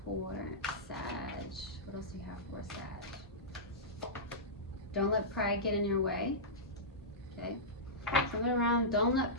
for Sag? What else do we have for Sag? Don't let pride get in your way. Okay. Something around, don't let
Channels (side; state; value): both; normal; correlation -0.15